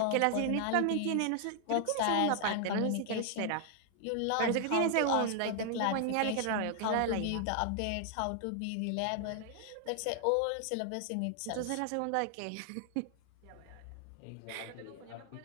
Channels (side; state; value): both; different; correlation 0.00